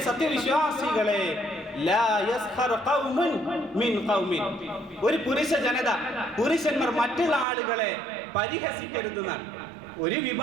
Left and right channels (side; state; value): left; drops out; at 7.5 s